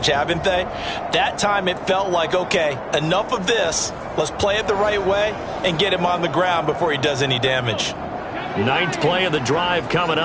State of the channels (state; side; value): identical; both; correlation 1.00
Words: haven't they? That time it felt like, okay, enough of this. Let's play it the right way and get him on the ground before he does any damage. 9th play of the drive coming